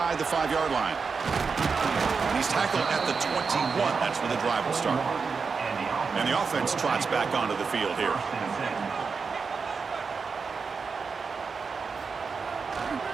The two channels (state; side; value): quieter; left; 5.1 dB